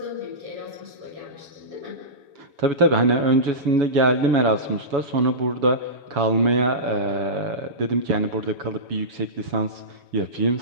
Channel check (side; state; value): left; late; 7.1 ms